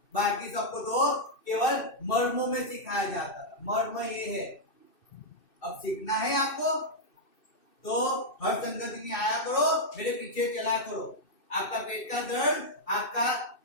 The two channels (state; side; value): late; right; 2.6 ms